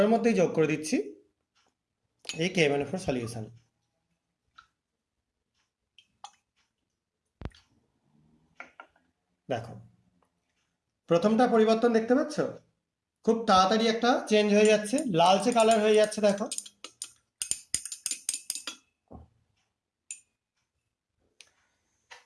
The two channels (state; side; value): identical; both; correlation 1.00